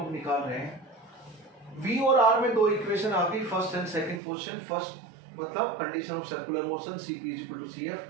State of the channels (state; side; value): drops out; left; at 4.2 s